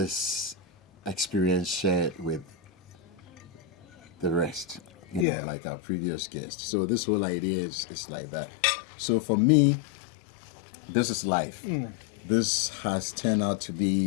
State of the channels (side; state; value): right; drops out; at 5.2 s